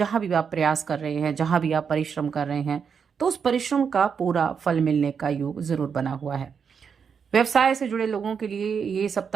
भी आप प्रयास कर रहे हैं, जहां भी आप परिश्रम कर रहे हैं, तो उस परिश्रम का पूरा फल मिलने का योग जरूर बना हुआ है। व्यवसाय से जुड़े लोगों के लिए ये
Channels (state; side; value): quieter; left; 6.6 dB